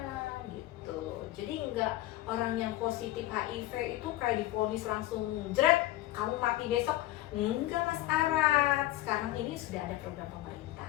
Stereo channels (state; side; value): quieter; right; 16.2 dB